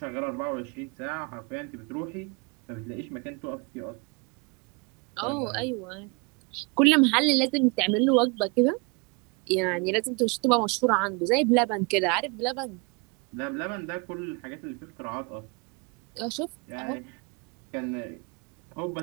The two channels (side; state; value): left; quieter; 30.7 dB